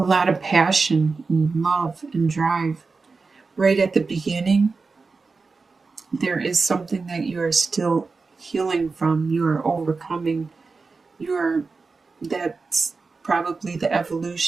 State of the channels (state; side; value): quieter; left; 4.3 dB